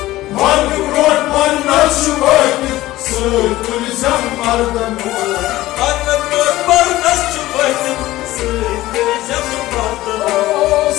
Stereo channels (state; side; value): quieter; right; 16.6 dB